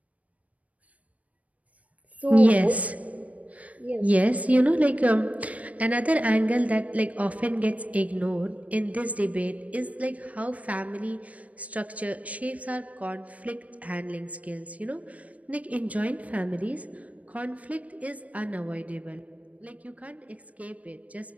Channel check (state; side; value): late; left; 0.068 ms